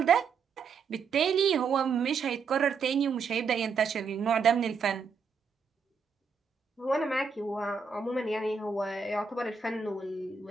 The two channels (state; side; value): quieter; left; 5.6 dB